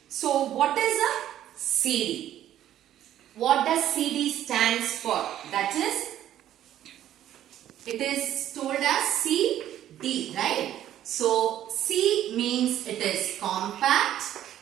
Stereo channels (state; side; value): quieter; left; 11.8 dB